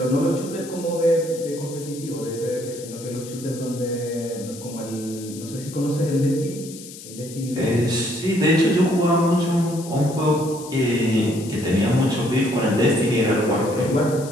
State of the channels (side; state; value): left; noise; hiss, 15 dB below the sound